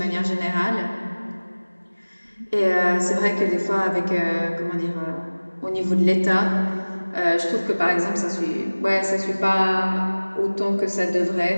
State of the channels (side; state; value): both; inverted; correlation -1.00